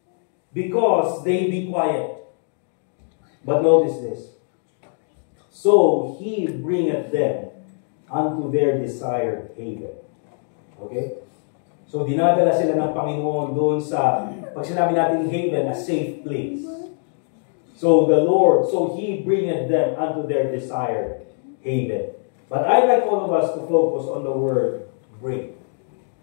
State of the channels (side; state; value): right; silent; 61 dB below the other